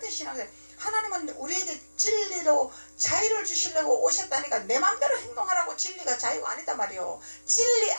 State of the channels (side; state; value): both; inverted; correlation -1.00